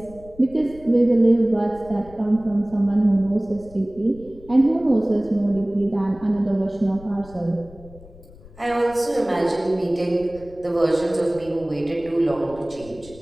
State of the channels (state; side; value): noise; left; rumble, 21 dB below the sound